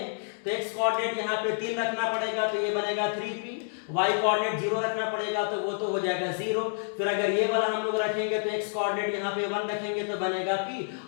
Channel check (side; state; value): right; silent; 59 dB below the other